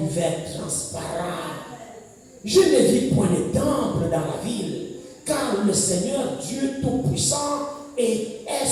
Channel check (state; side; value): identical; both; correlation 1.00